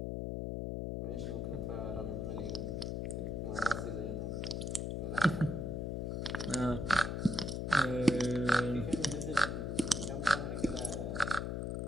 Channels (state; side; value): noise; left; hum, 2 dB below the sound